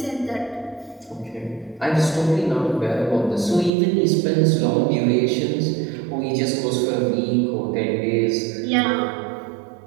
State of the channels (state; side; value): drops out; left; at 3.7 s